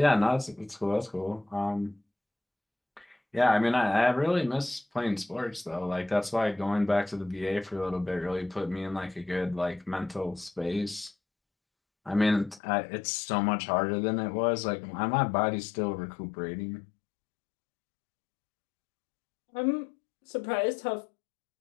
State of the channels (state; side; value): drops out; right; at 12.6 s